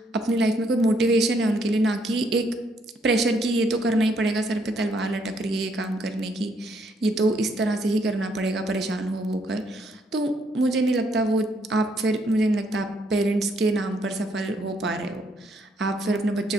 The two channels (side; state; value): both; normal; correlation 0.71